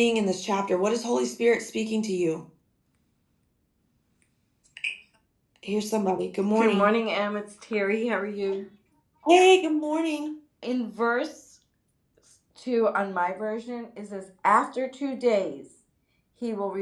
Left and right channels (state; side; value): identical; both; correlation 1.00